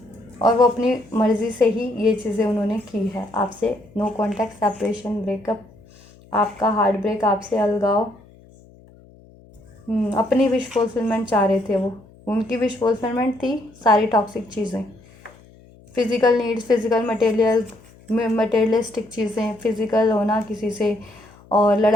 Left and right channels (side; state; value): left; noise; hum, 25 dB below the sound